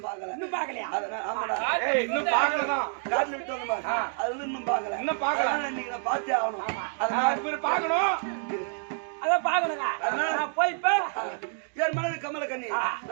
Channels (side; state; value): left; silent; 59 dB below the other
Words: பாக்கலையா? ஆமாடா இன்னும் பாக்கலதான். காட்டுல விட்டு வந்த மாதிரி அது வந்து இன்னும் பாக்கல. இன்னைக்கு நான் பார்த்தே ஆகணும். அதனால பாக்கணும். அதான் பாக்கணும். போய் என் மனைவி கமலக்கண்ணி